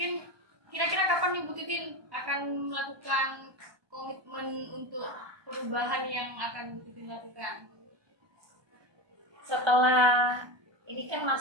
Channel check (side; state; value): left; late; 1.2 ms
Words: kira-kira kapan nih Bu Titin akan melakukan komitmen untuk perubahan yang akan Bu Titin lakukan? Setelah ini kan